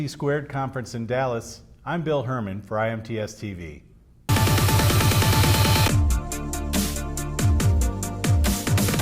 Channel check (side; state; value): both; identical; correlation 1.00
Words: Squared Conference in Dallas, I'm Bill Herman for IMTS TV.